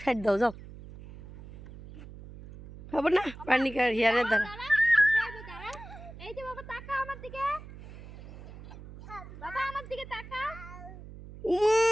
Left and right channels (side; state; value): right; noise; hum, 15 dB below the sound